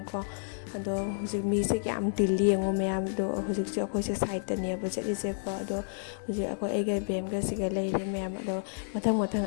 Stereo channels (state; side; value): silent; right; digital silence